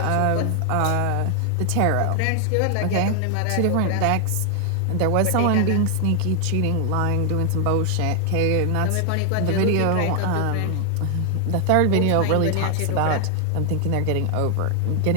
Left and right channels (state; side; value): different; both; correlation 0.00